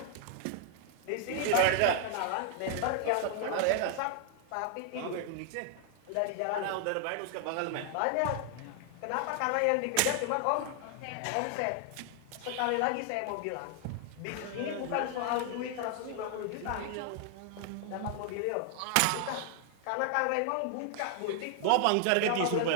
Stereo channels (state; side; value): different; both; correlation 0.00